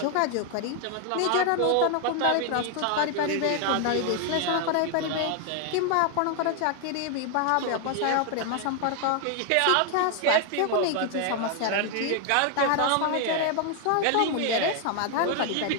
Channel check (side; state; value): both; different; correlation 0.00